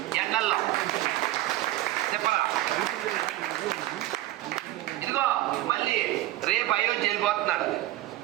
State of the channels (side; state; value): left; quieter; 16.0 dB